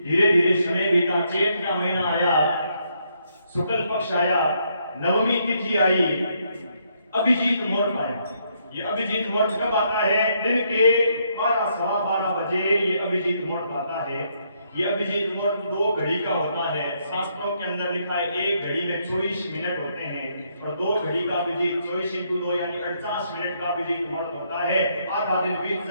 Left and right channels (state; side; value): inverted; both; correlation -0.74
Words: धीरे धीरे समय बीता, चैत का महीना आया, शुक्ल पक्ष आया, नवमी तिथि आई, अभिजीत मुहूर्त आया। ये अभिजीत मुहूर्त कब आता है? दिन के 12-12:15 बजे ये अभिजीत मुहूर्त आता है। ये अभिजीत मुहूर्त 2 घड़ी का होता है। शास्त्रों के अंदर लिखा है 1 घड़ी में 24 मिनट होते हैं। और 2 घड़ी का अभिजीत 24x2 यानी 48 मिनट का अभिजीत मुहूर्त होता है। आधा दिन बीत